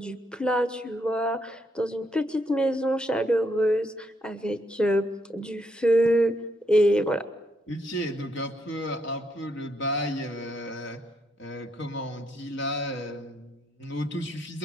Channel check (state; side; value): normal; both; correlation 0.76